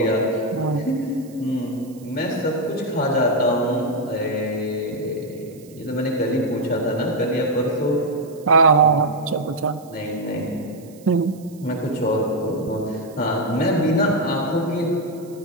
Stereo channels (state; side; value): noise; right; hiss, 26 dB below the sound